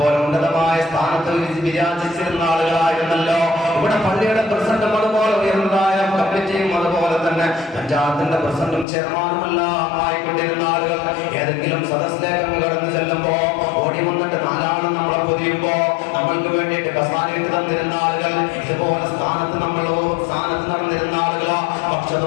ഉന്നതമായ സ്ഥാനത്ത് വിരാജിച്ചിരുന്ന ആളുകളായിരുന്നല്ലോ. ഇവിടെ പള്ളിയുടെ പ്രസിഡന്റും അതുപോലെ ഉയർന്നതായ കമ്മിറ്റിയും അതുപോലെ തന്നെ പഞ്ചായത്തിന്റെ പ്രസിഡന്റും ചെയർമാനുമെല്ലാം ആയിക്കൊണ്ടിരുന്ന ആളുകൾ ഏതെങ്കിലും സദസ്സിലേക്ക് കടന്നു ചെല്ലുമ്പോ ഓടി വന്നിട്ട് നാലാള് നമ്മളെ പൊതിയുമ്പോ നമ്മൾക്ക് വേണ്ടിയിട്ട് കസാരയിട്ട് തന്നിരുന്ന ആളുകൾ, ഇതുപോലെ സ്ഥാനത്ത് നടന്നിരുന്ന ആളുകളോ, പക്ഷെ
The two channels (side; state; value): right; drops out; at 8.8 s